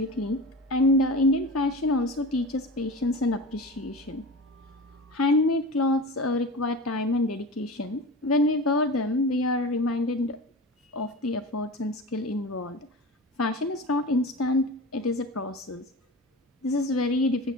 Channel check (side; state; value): both; normal; correlation 0.31